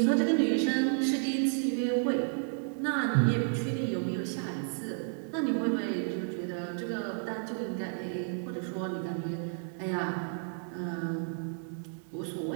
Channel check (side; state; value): left; silent; 57 dB below the other